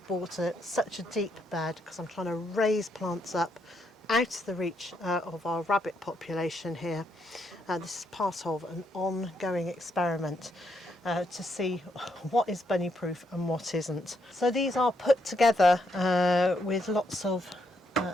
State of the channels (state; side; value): normal; both; correlation 0.77